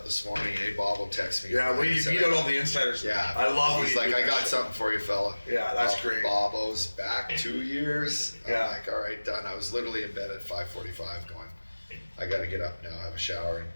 this morning. Hey, Bob text me. Yeah, when you beat out all the insiders. Yeah. I love He's like, I got something for you, fella. Yeah, that's great. Bobo's back 2 years. Yeah. I'm like, all right, done. I was literally in bed at 5:45 going, I got to get up now, have a shower, and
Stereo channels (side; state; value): both; inverted; correlation -1.00